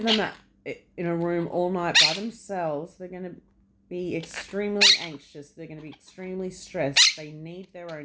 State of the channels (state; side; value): identical; both; correlation 1.00